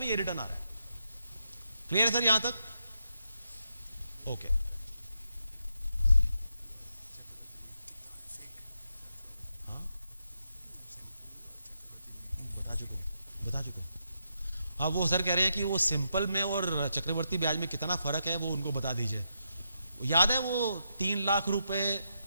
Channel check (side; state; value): both; inverted; correlation -0.83